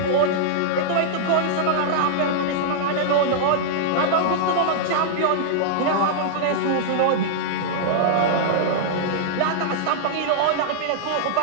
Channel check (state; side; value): different; both; correlation -0.02